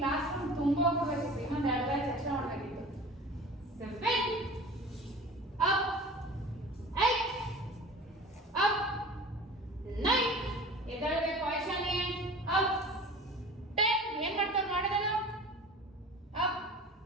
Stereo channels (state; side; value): normal; both; correlation 0.39